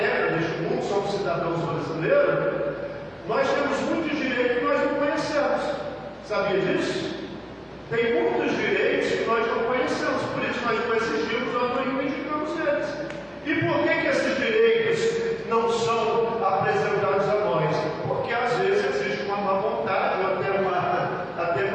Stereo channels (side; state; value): both; identical; correlation 1.00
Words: neste mundo, somos cidadãos brasileiros, nós temos muitos direitos que nós não conhecemos. Sabia disso? Tem muitos direitos que nós não conhecemos, por isso nós não exigimos ou não reivindicamos eles. E por que esses direitos não são apresentados a nós? Porque às vezes existe uma má vontade ou até